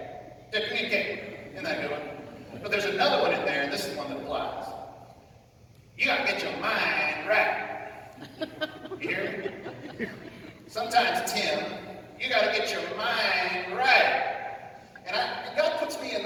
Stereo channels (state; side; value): identical; both; correlation 1.00